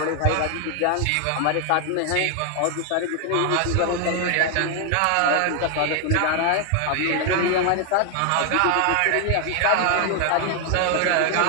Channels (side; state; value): both; different; correlation 0.00